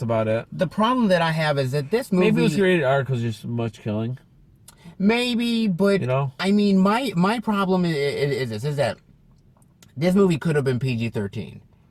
about it. The problem that I have is that this movie... Maybe it was rated R because there's so much killing. Maybe, but, you know? I mean, my problem is that this movie could have been PG-13,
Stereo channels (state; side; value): identical; both; correlation 1.00